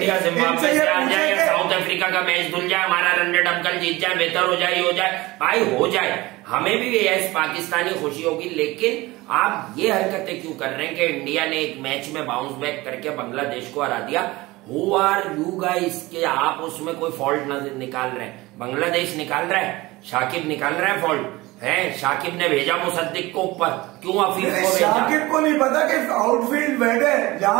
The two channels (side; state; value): left; quieter; 20.5 dB